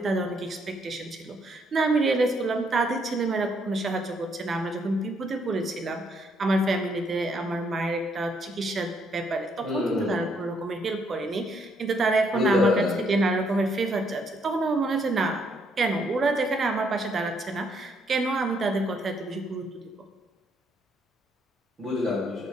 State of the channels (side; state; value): both; normal; correlation 0.71